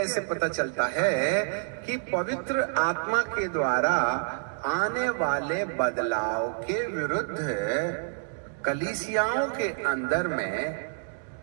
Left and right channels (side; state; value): left; silent; digital silence